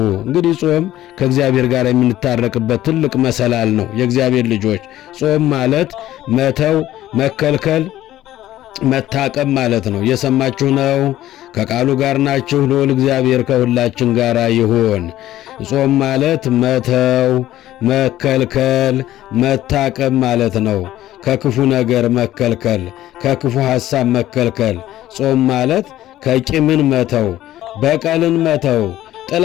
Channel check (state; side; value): quieter; right; 13.9 dB